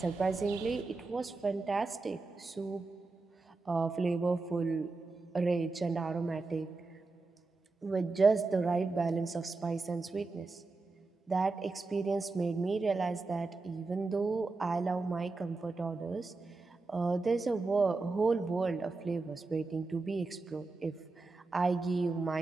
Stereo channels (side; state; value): left; quieter; 3.7 dB